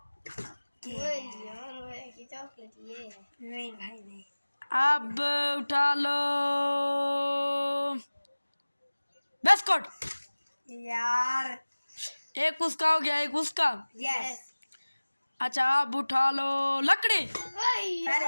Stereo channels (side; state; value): both; inverted; correlation -1.00